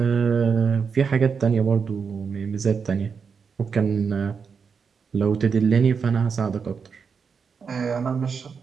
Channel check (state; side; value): quieter; left; 5.9 dB